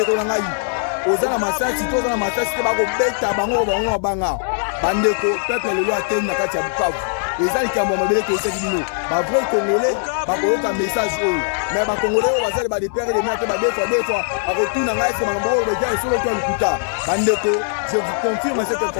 na ngai ozana masasi to ozana masasi te bakobeta bango banga bandeko peuple lelo ateni na kati ya Bukavu eza likambo ya mabele toyesaki bino bavrai congolais bakoyoka message oyo mais bacongolais oyo bazali badepere de mate badefoa bakotuna ngai ese makambo oyo beja esolo to ya lokuta bandeko je vous confirme cette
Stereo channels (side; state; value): right; silent; digital silence